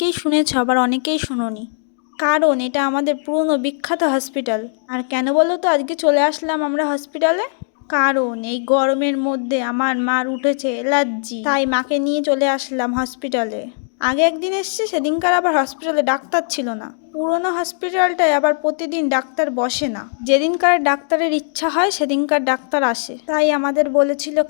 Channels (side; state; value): right; silent; digital silence